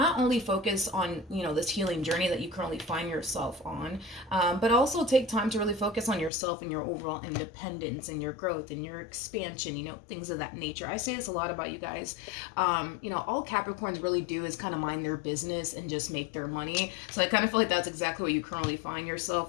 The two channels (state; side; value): drops out; right; at 6.3 s